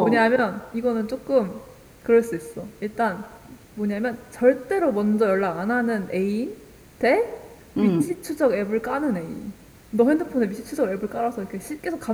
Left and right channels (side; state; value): both; identical; correlation 1.00